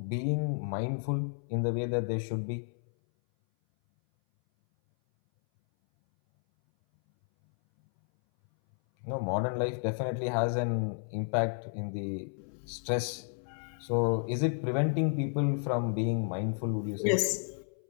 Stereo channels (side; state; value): right; silent; 57 dB below the other